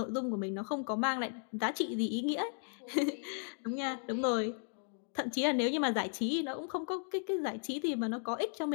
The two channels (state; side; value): silent; right; 54 dB below the other